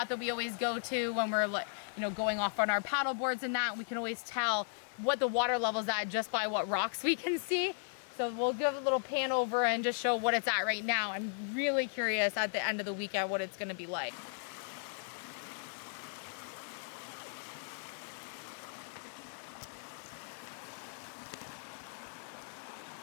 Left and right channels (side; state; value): right; silent; 54 dB below the other